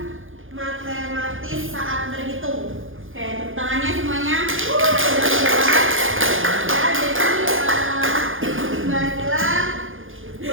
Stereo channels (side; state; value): left; late; 0.58 ms